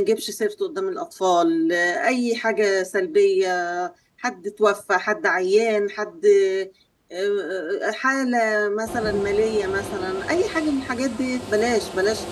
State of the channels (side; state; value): both; identical; correlation 1.00